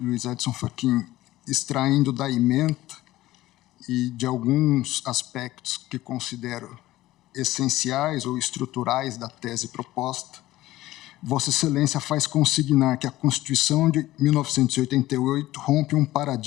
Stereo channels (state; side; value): quieter; right; 16.3 dB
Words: Edson Fachin, extraindo da ementa e de alguns aspectos que considero essenciais ou estruturais da tese proposta, Vossa Excelência faz consignar que a Constituição de 1988 rompe um